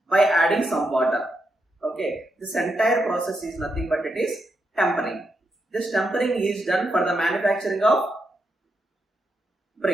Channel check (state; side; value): normal; both; correlation 0.83